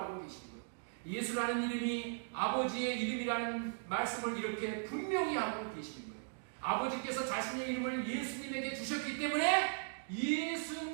계시는 거예요. 예수라는 이름이 아버지의 이름이라는 말씀을 이렇게 분명히 하고 계시는 거예요. 아버지께서 자신의 이름을 예수님에게 주셨기 때문에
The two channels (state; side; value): silent; left; digital silence